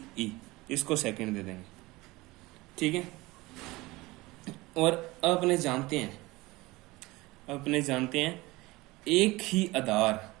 ई, इसको सेकंड दे देंगे। ठीक है, और अब अपने जानते हैं एक ही आधार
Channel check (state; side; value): quieter; left; 21.1 dB